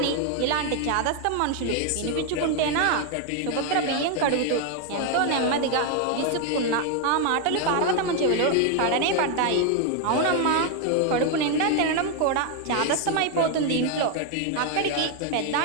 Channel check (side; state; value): both; different; correlation 0.01